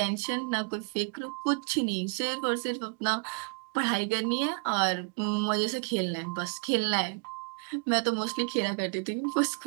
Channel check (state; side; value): quieter; left; 38.3 dB